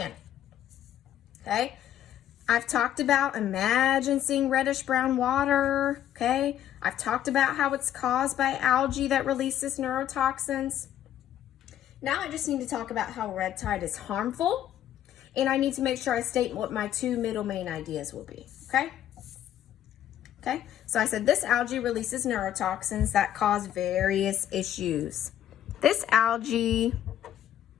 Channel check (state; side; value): quieter; right; 11.4 dB